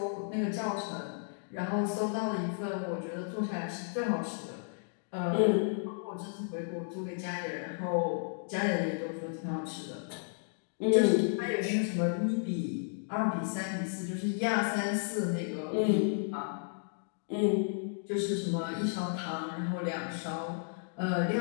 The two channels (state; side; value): silent; right; digital silence